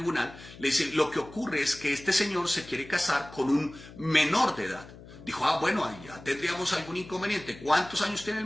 le dice, lo que ocurre es que este señor se quiere casar con un menor de edad. Dijo, bueno, ahí ya tendríamos algún inconveniente. ¿Cuántos años tiene el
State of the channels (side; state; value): left; noise; hum, 18 dB below the sound